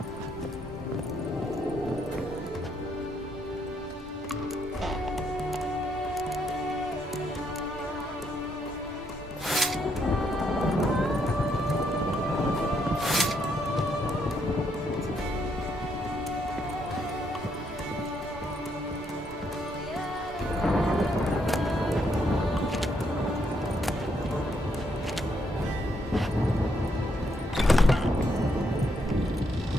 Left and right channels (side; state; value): both; normal; correlation 0.75